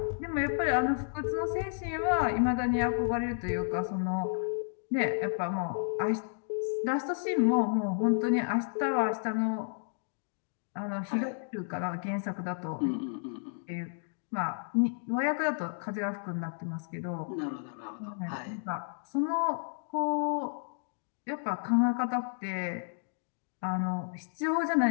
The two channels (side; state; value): right; silent; digital silence